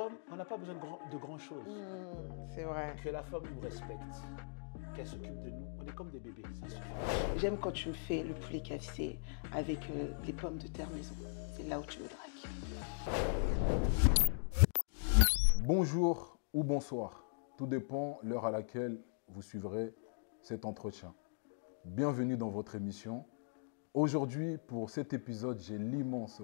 on n'a pas besoin de grand chose. C'est vrai. Que la femme nous respecte, qu'elle s'occupe de nous. On est comme des bébés, ça suffit. J'aime quand tu me fais le poulet KFC avec les pommes de terre maison. C'est là où tu me dragues. Bonjour ou bonsoir, tout dépend l'heure à laquelle vous suivrez cet entretien. Bienvenue dans votre émission. Aujourd'hui, pour cet épisode, j'ai l'immense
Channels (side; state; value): right; silent; digital silence